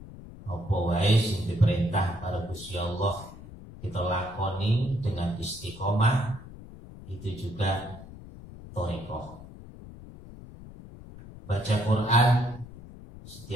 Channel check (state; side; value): noise; left; rumble, 16 dB below the sound